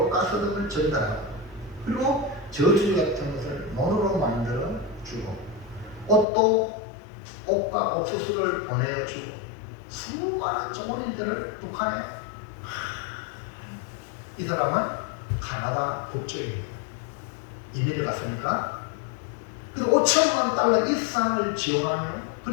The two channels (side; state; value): right; drops out; at 6.2 s